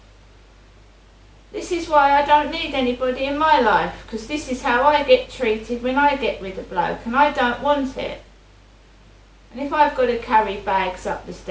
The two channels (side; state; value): both; identical; correlation 1.00